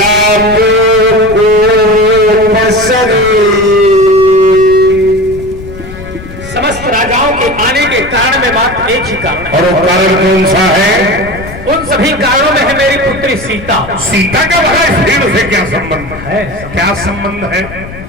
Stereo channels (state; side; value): noise; left; rumble, 14 dB below the sound